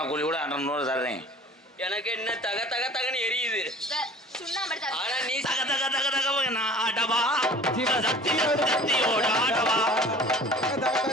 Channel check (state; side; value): normal; both; correlation 0.45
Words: கூலி கூட 200 தர்றேன். எனக்கு என்ன தக தக தகன்னு எரியுது. ஆனா நீ தக தக தக தக நான் ஆடவா சக்தியோட ஆடவா.